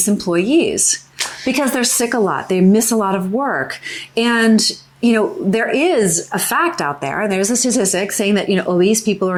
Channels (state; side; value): identical; both; correlation 1.00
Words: employees because they're sick a lot. They miss a lot of work. And there is a fact out there, and there's a statistic saying that, obese people are